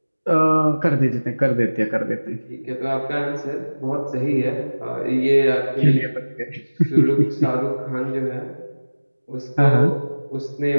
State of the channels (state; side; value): inverted; both; correlation -1.00